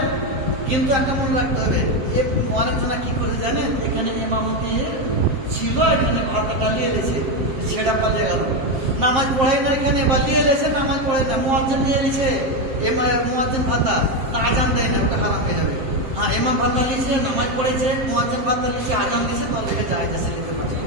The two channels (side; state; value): left; late; 7.6 ms